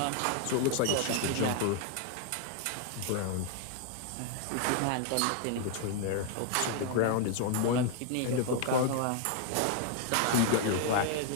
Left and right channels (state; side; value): different; both; correlation 0.00